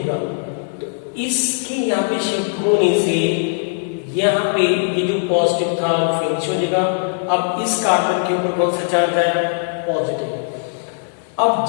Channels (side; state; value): right; silent; digital silence